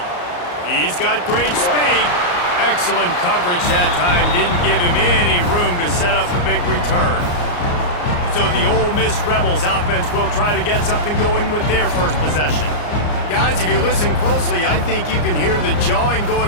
He's got great speed. Excellent coverage that time. Didn't give him any room to set up a big return. So the Ole Miss Rebels offense will try to get something going with their first possession. Guys, if you listen closely, I think you can hear the jawing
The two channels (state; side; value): late; right; 34 ms